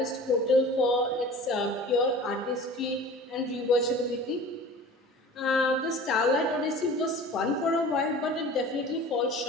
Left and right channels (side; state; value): both; normal; correlation 0.41